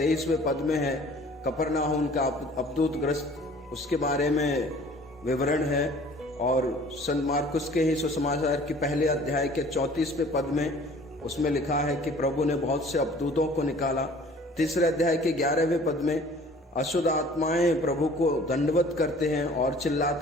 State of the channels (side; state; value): both; normal; correlation 0.50